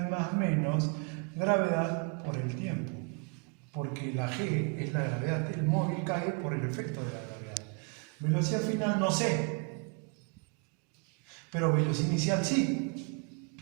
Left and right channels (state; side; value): quieter; left; 33.1 dB